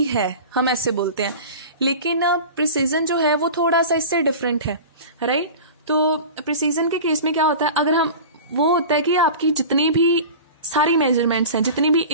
है, हम ऐसे बोलते हैं. लेकिन प्रिसीजन जो है वो थोड़ा सा इससे डिफरेंट है. राइट. तो प्रिसीजन के केस में क्या होता है, अगर हम वो होता है कि आपकी जितनी भी सारी मेजरमेंट्स हैं, जितनी भी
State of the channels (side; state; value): both; inverted; correlation -0.35